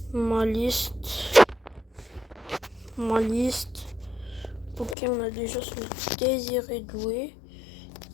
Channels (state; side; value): drops out; right; at 5.0 s